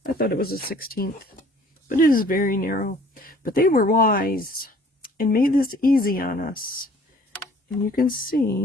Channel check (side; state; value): both; normal; correlation 0.55